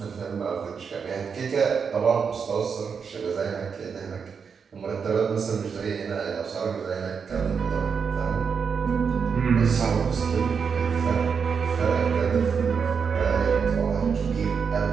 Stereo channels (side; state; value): left; quieter; 6.2 dB